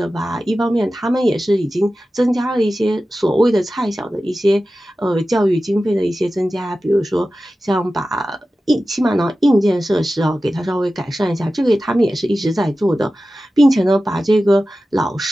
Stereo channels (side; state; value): both; normal; correlation 0.94